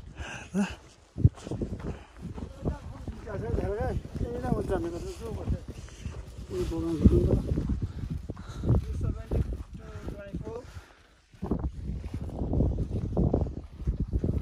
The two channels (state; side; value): identical; both; correlation 1.00